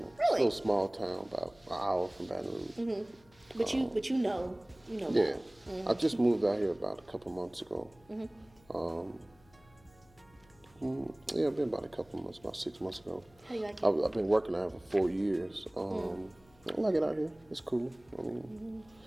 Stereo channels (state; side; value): noise; left; hum, 29 dB below the sound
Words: It's a little small town, about an hour from Baton Rouge. Mm-hmm. But you know. Yeah. Mm-hmm. I just moved out here about a couple months ago. Mm-hmm. It's been about a couple months, about 6 months ago. How do you like it? I've been working out here for 4 years. I like it out here. It's cool. I mean,